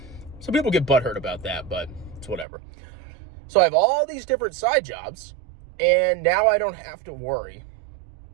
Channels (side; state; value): left; drops out; at 2.5 s